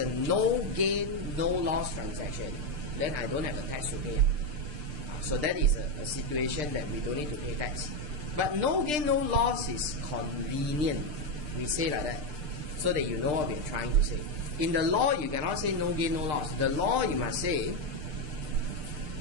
no gain, no loss transaction, then I don't have a tax to pay. So that is a situation that we don't need to pay tax. But no gain, no loss is convenient. We say like that, so that you know what we're trying to say. In the law, you cannot say no gain, no loss. The law, you must say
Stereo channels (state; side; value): late; left; 6.7 ms